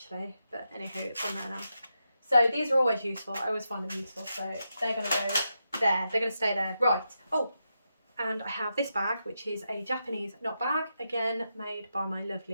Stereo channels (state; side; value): inverted; both; correlation -0.86